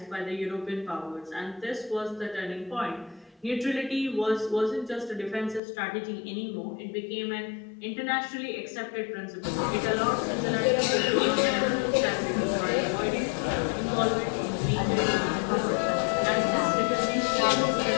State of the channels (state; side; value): drops out; right; at 5.6 s